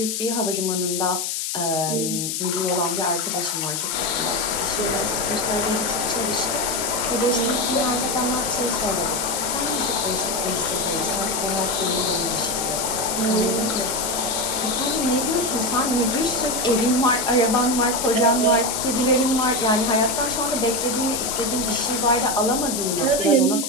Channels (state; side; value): noise; left; hiss, 2 dB below the sound